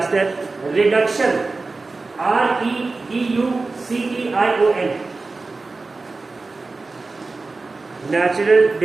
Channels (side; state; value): left; quieter; 3.7 dB